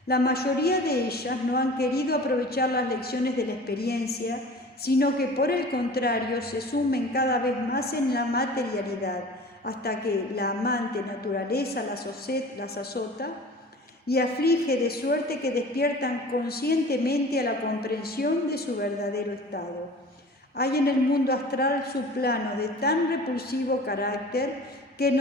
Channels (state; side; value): normal; both; correlation 0.41